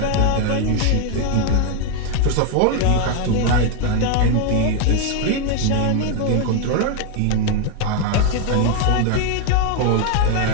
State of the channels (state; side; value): different; both; correlation 0.01